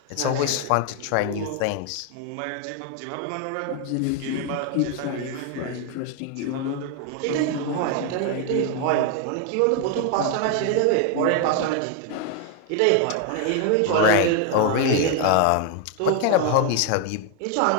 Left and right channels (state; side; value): different; both; correlation 0.01